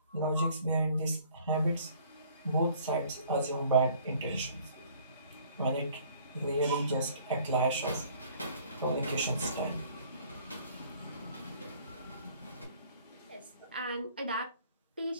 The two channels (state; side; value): inverted; both; correlation -0.56